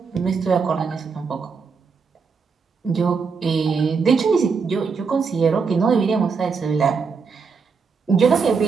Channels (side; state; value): left; quieter; 5.3 dB